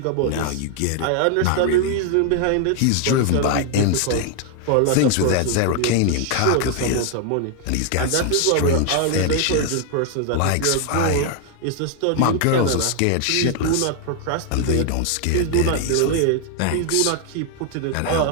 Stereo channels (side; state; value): both; different; correlation 0.00